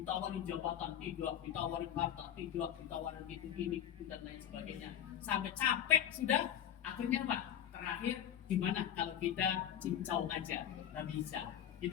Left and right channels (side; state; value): right; quieter; 10.1 dB